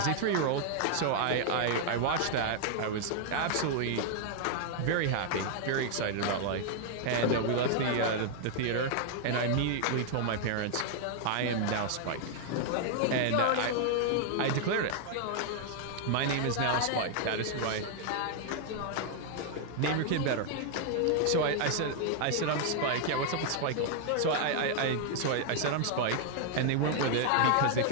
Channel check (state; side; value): different; both; correlation 0.00